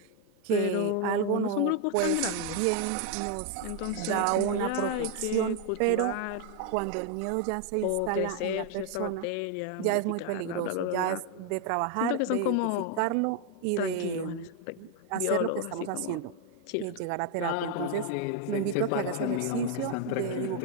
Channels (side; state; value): both; different; correlation 0.01